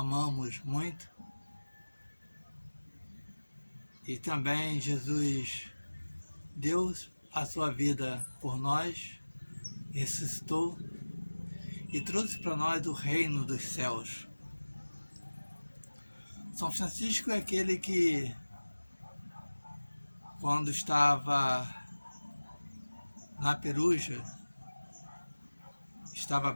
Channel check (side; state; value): both; inverted; correlation -1.00